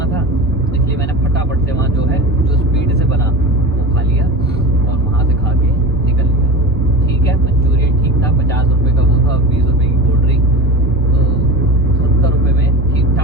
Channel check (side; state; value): both; normal; correlation 0.28